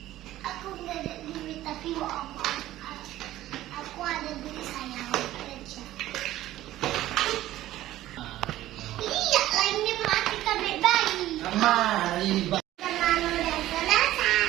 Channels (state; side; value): quieter; left; 14.6 dB